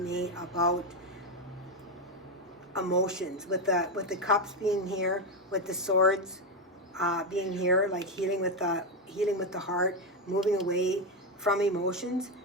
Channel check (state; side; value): normal; both; correlation 0.08